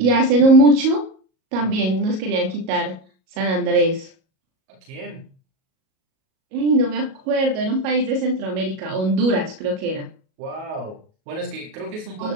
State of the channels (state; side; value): late; left; 37 ms